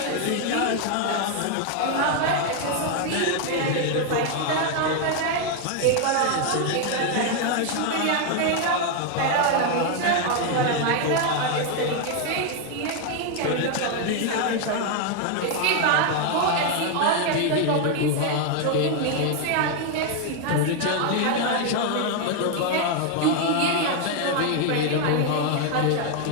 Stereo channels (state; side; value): different; both; correlation 0.01